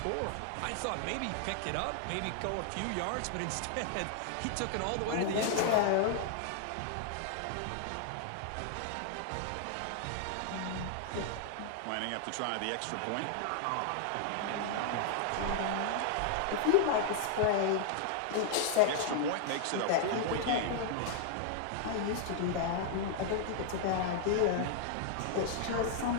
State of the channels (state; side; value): different; both; correlation 0.00